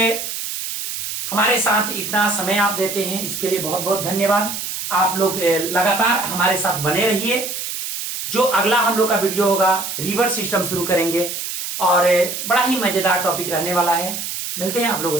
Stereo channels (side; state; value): right; noise; hiss, 5 dB below the sound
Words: हमारे साथ इतना समय आप देते हैं, इसके लिए बहुत बहुत धन्यवाद। आप लोग लगातार हमारे साथ बने रहिए। जो अगला हम लोग का वीडियो होगा, रिवर सिस्टम शुरू करेंगे और बड़ा ही मजेदार टॉपिक रहने वाला है। मिलते हैं आप लोगों